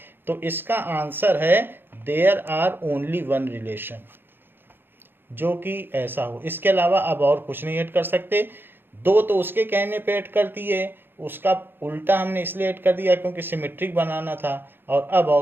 तो इसका आंसर है देयर आर ओनली 1 रिलेशन, जो कि ऐसा हो। इसके अलावा अब और कुछ नहीं ऐड कर सकते। 2 तो उसके कहने पे ऐड कर दिए, उसका उल्टा हमने इसलिए ऐड कर दिया क्योंकि सिमेट्रिक बनाना था। और अब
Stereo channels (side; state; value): left; late; 0.10 ms